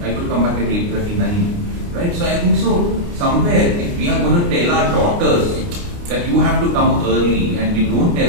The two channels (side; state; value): left; late; 29 ms